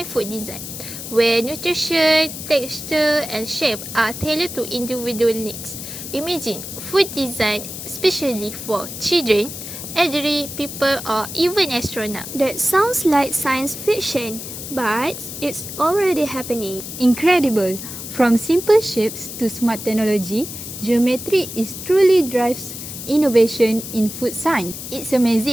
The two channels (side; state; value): left; noise; hiss, 9 dB below the sound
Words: food design, where nutrition, texture, and shape are tailored to individual needs. Imagine food design especially for children, elderly people, or even astronauts. That sounds like science fiction, but it's already happening. Incredible! From simple shapes to smart technology, geometry is truly drives innovation in food science. It's